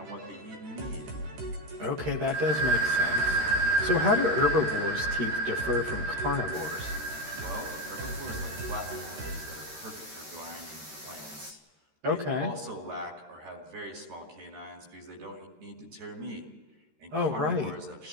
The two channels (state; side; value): late; left; 13 ms